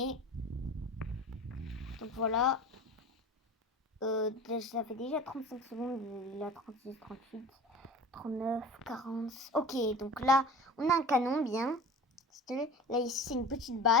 Donc voilà. Ça fait déjà 35 secondes. Il a 36, 38, 39, 40. Ok, donc là, on a un canon bien. Là, ici, c'est une petite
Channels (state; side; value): normal; both; correlation 0.36